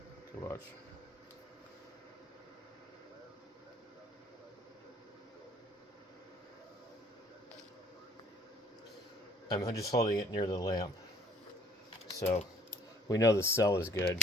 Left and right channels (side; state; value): both; normal; correlation 0.58